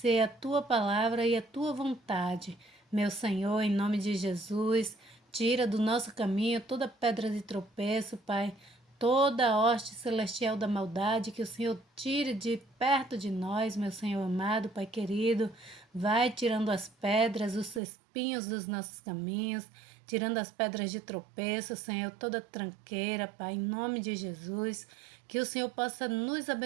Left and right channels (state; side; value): drops out; left; at 17.8 s